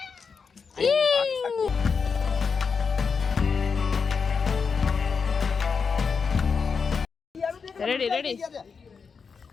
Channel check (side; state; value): right; quieter; 5.6 dB